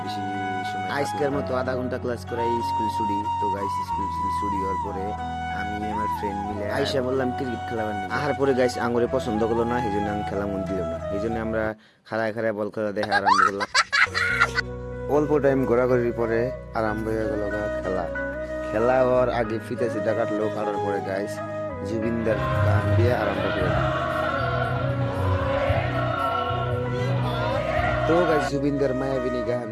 বেশি সময় আজকের মতো আধা ঘন্টা ক্লাস করাই স্কুল ছুটি। তো গাইস স্কুল ছুটি হওয়ার পরে আমি আমার ফ্রেন্ড মিলে আইসা বললাম ক্রিকেট খেলাবার নিয়ে। আহার পরে গাইস আঙুরে পছন্দ করলো না, এই জন্য আমি খেলা মন দিল না। এই জন্য আমরা খাড়ায় খাড়ায় বল খেলা দেখা আরম্ভ করলাম। অল্প টাইম ঘোরাঘুরির পরে আরম্ভ হয়ে গেল খেলা। খেলা হওয়ার আগে ফিতে সিটা কাটলো, কাটার পরে গাইস জুবিনদার গান দিয়ে আরম্ভ করে দিল। তো গাইস জুবিনদার মায়াবিনী গান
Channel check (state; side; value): identical; both; correlation 1.00